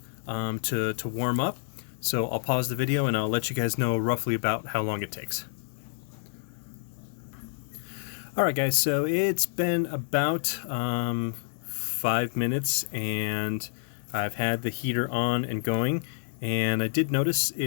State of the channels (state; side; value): silent; right; digital silence